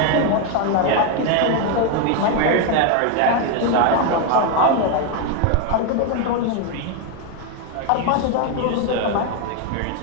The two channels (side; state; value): both; different; correlation 0.01